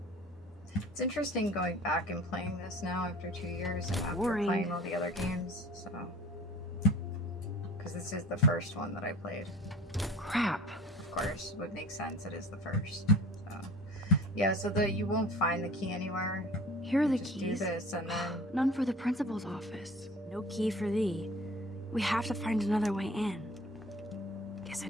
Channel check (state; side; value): normal; both; correlation 0.44